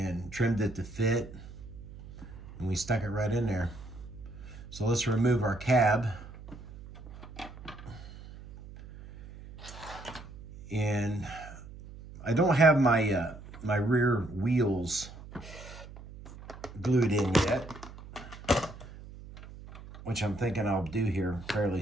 trimmed it to fit, and we stuck it right in there. So let's remove our cab. And I don't have my my rear wheels glued in yet, which I'm thinking I'll do here fairly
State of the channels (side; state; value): right; noise; hum, 16 dB below the sound